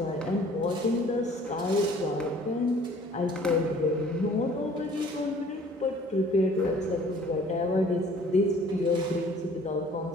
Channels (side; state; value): both; normal; correlation 0.53